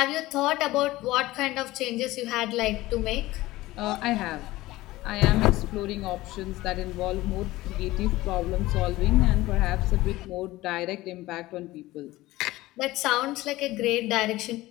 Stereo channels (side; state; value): right; quieter; 18.0 dB